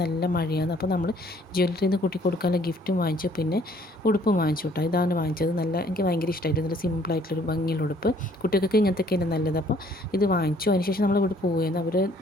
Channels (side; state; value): both; normal; correlation 0.61